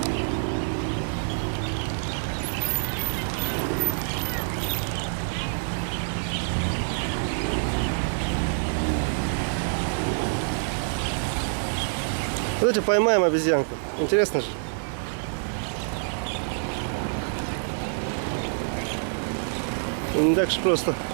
Давайте поймаем обезьянку. Интересно же. Не так же просто.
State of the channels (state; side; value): silent; left; digital silence